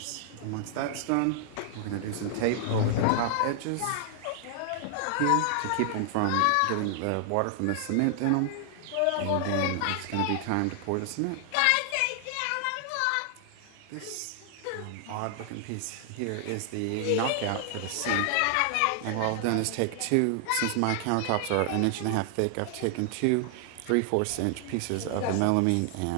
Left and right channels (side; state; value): both; different; correlation 0.00